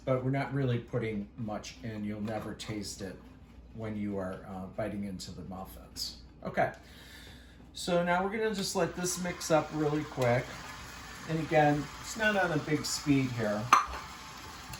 we're not really putting much in. You'll never taste it when you are biting into the muffins. Okay, so now we're gonna just let this mix up really quick. And again, it's not on a big speed here.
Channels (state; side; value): identical; both; correlation 1.00